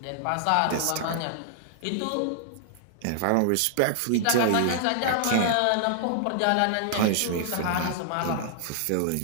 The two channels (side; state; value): both; different; correlation -0.01